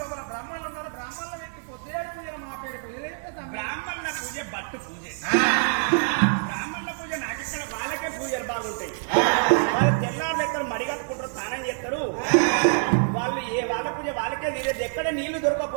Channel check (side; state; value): left; silent; 61 dB below the other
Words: బ్రాహ్మణులు ఉన్నారు బ్రాహ్మణుల వ్యక్తి పొద్దులేడు పూజ మా పేరు పూజ బ్రాహ్మణుల పూజ బట్టు పూజ బ్రాహ్మణుల పూజ నాకిక్కడ వాళ్ళకే పూజలు బాగుంటాయి వాళ్ళు తెల్లారు ఎక్కడ మడిగట్టుకుంటారు స్నానం చేస్తారు వాళ్ళు వాళ్ళ పూజ వాళ్ళకే నీళ్ళు ఎక్కడ నీళ్లు